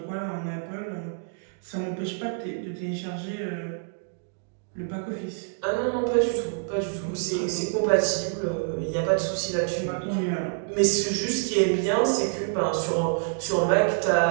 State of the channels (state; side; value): silent; left; digital silence